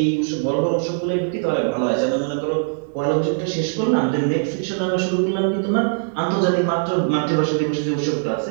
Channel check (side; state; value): left; silent; digital silence